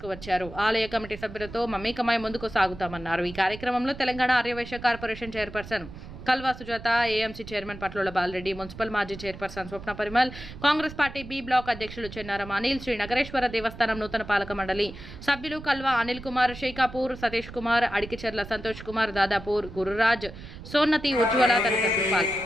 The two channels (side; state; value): right; noise; rumble, 14 dB below the sound